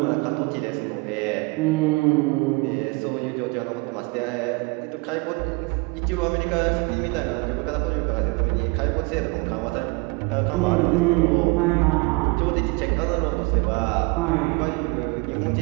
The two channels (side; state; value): left; quieter; 28.6 dB